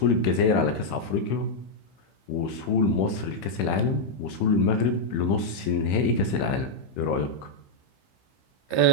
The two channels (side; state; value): right; late; 15 ms